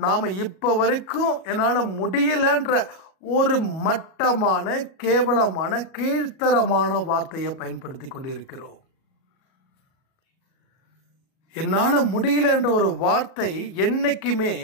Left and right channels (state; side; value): late; right; 38 ms